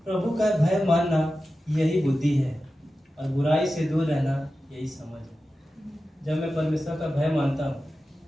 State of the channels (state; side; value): normal; both; correlation 0.93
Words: प्रभु का भय मानना यही बुद्धि है और बुराई से दूर रहना यही समझ है। जब मैं परमेश्वर का भय मानता